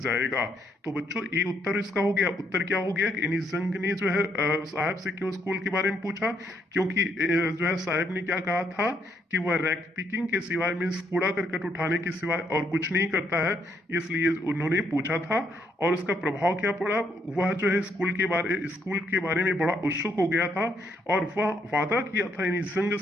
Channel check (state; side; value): normal; both; correlation 0.73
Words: तो बच्चों ये उत्तर इसका हो गया। उत्तर क्या हो गया कि इनिस जंग ने जो है साहब से क्यों स्कूल के बारे में पूछा, क्योंकि जो है साहब ने क्या कहा था कि वह रैक पिकिंग के सिवाय, मीन्स कूड़ा करकट उठाने के सिवाय और कुछ नहीं करता है, इसलिए उन्होंने पूछा था। और उसका प्रभाव क्या पड़ा, वह जो है स्कूल के बारे में बड़ा उत्सुक हो गया था, और वह वादा किया था इन जंग